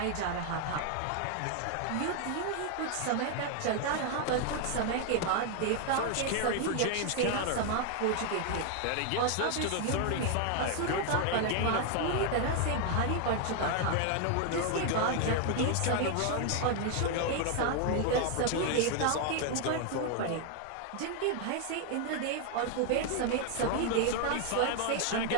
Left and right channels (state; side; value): different; both; correlation 0.00